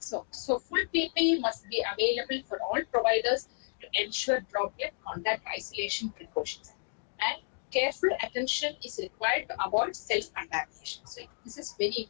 full PPE must be available for all providers to ensure droplet contact isolation precautions. And careful attention is required to avoid self-contamination. So this is very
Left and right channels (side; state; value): right; silent; digital silence